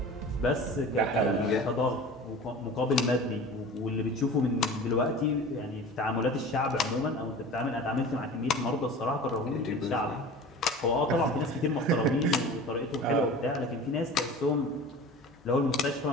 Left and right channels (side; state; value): both; normal; correlation 0.38